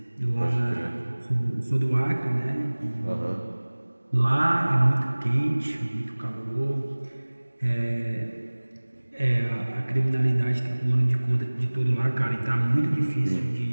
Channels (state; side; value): inverted; both; correlation -1.00